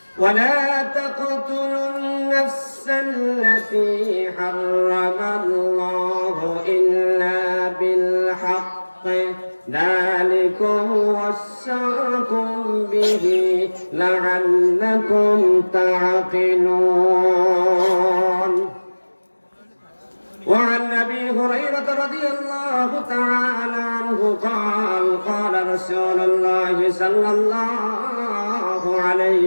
ولا تقتلوا النفس التي حرم الله إلا بالحق، ذلكم وصاكم به لعلكم تعقلون. وعن أبي هريرة رضي الله تعالى عنه قال قال رسول الله صلى الله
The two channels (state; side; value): inverted; both; correlation -1.00